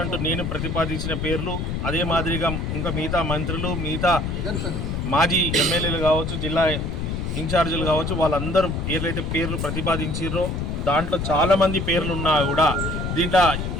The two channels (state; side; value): noise; left; rumble, 2 dB below the sound